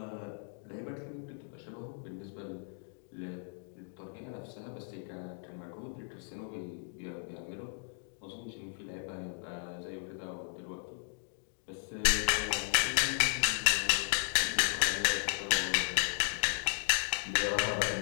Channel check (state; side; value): silent; right; 54 dB below the other